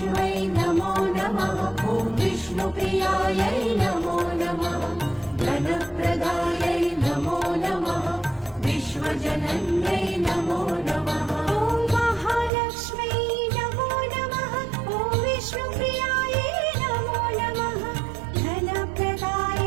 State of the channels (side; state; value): left; drops out; at 12.5 s